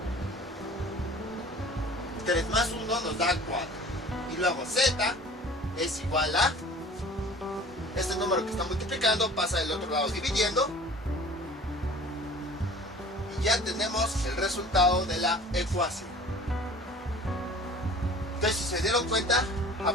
3 más 1 nos da 4. Y luego z es igual a este número que está multiplicando, pasa del otro lado dividiendo, y ya tenemos el resultado de la ecuación. Entonces, si se dieron cuenta,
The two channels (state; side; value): normal; both; correlation 0.45